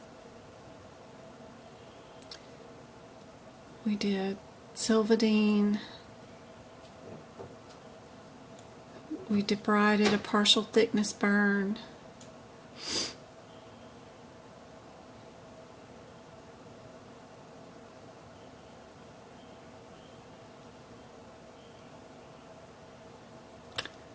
We did Silvadene. We debrided a partial thickness burn.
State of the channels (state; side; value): identical; both; correlation 1.00